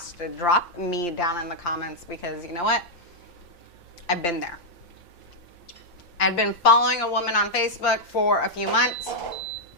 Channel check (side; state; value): right; late; 8.7 ms